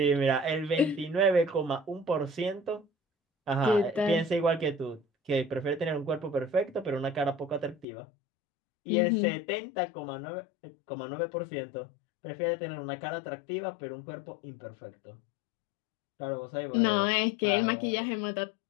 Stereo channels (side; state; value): right; drops out; at 7.9 s